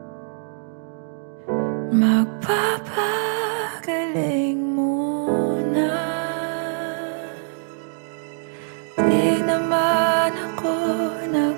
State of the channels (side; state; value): left; silent; digital silence